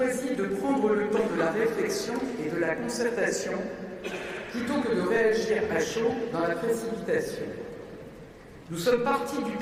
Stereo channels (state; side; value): identical; both; correlation 1.00